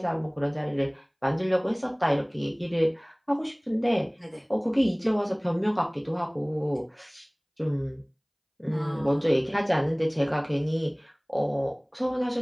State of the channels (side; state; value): both; identical; correlation 1.00